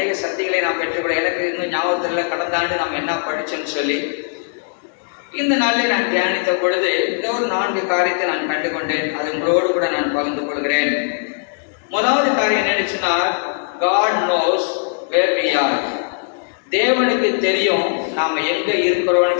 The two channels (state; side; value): silent; right; digital silence